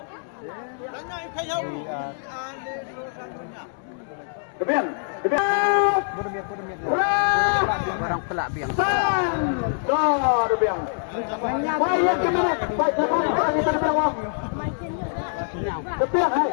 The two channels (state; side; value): silent; right; 62 dB below the other